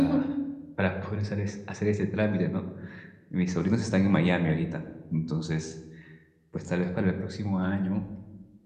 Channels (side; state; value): both; identical; correlation 1.00